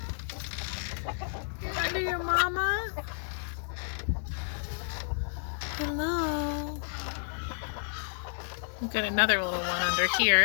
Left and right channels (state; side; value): silent; right; digital silence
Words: You're under your mama. Hello. We've got another little one under